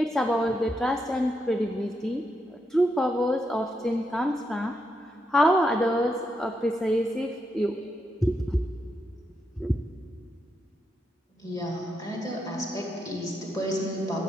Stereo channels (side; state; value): both; normal; correlation 0.82